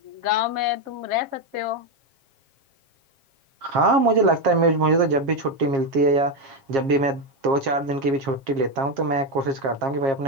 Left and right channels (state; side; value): late; left; 7.4 ms